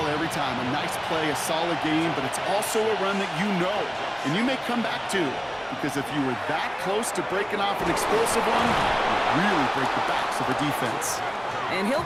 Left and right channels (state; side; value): identical; both; correlation 1.00